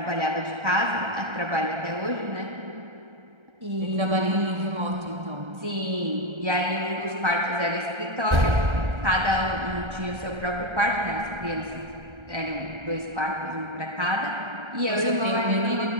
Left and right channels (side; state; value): left; late; 1.3 ms